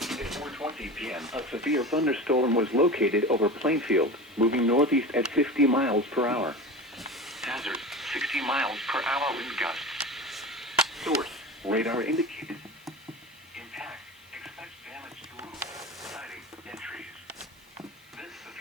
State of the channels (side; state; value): both; normal; correlation 0.31